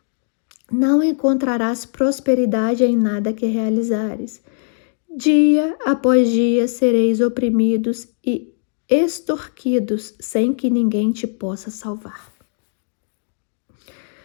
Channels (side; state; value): right; silent; digital silence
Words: Não encontrarás prosperidade em nada que realizares. Dia após dia sereis oprimidos e extorquidos, sem que ninguém te possa salvar.